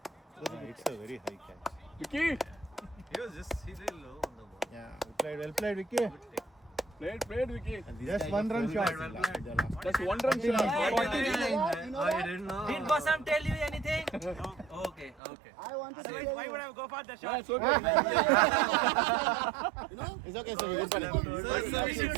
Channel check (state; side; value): drops out; left; at 15.2 s